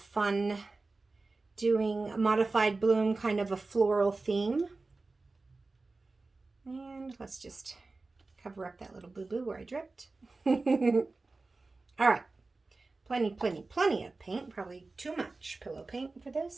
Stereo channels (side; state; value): left; quieter; 3.6 dB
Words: doing a modified bloom, kind of a floral theme. And let's just cover up that little boo-boo where I dripped. All right, plenty of paint, probably too much pillow paint for